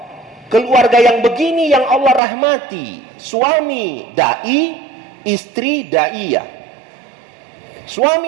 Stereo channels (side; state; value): left; drops out; at 2.2 s